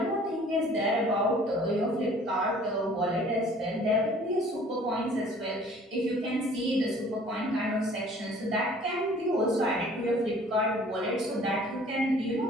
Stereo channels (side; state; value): both; normal; correlation 0.52